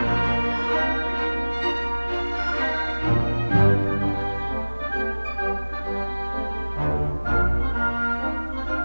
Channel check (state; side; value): inverted; both; correlation -1.00